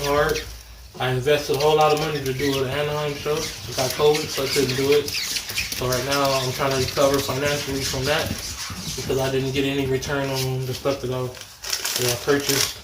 hard. I invested a whole lot of money to do an Anaheim show. I got COVID, so I couldn't do it. So right now I'm trying to recover financially from that, because I didn't get any return on the stuff that I purchased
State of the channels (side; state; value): both; identical; correlation 1.00